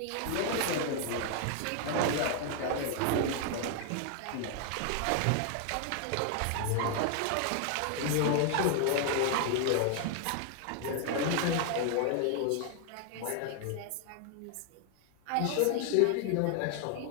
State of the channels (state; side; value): different; both; correlation 0.00